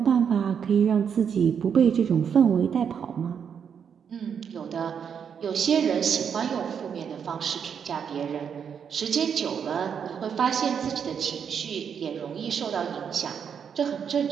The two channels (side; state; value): left; quieter; 7.4 dB